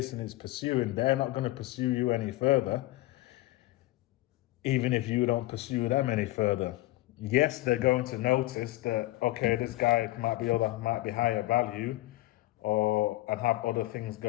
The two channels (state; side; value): quieter; right; 18.1 dB